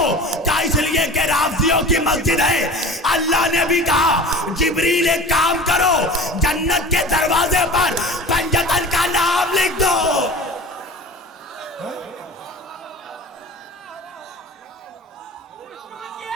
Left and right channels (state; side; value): normal; both; correlation 0.38